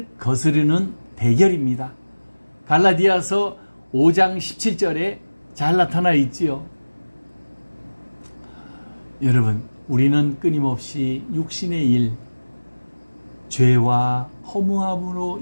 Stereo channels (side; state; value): both; inverted; correlation -1.00